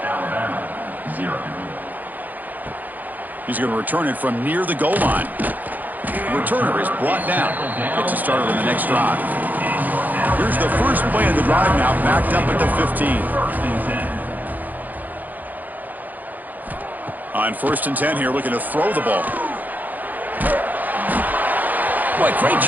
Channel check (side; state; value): left; late; 0.083 ms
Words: He's going to return it from near the goal line. The returner is brought down. Gets it started on the next drive. Here's the first play of the drive now, backed up at the 15. On 1st and 10 here, looking to throw the ball. Boy, great